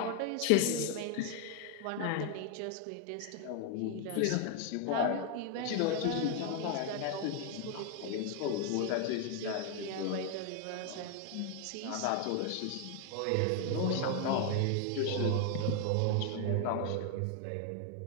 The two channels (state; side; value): different; both; correlation 0.00